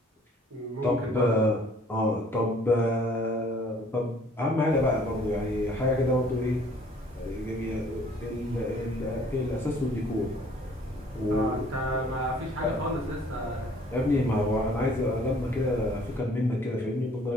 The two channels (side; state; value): both; normal; correlation 0.57